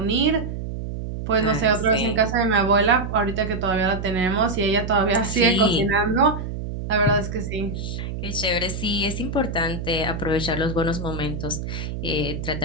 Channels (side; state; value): right; noise; hum, 6 dB below the sound